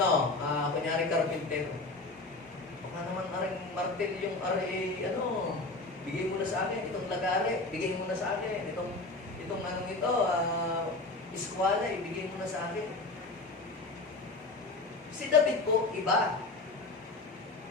kunyari carpenter. Baka naman aring martel yung bigay mo na sa akin itong lagare, bigay mo na sa akin itong iskwala, ibigay mo na sa akin. Si David po, iba.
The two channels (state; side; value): quieter; right; 3.2 dB